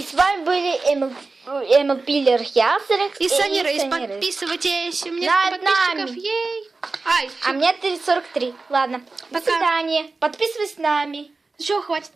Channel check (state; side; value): quieter; left; 3.8 dB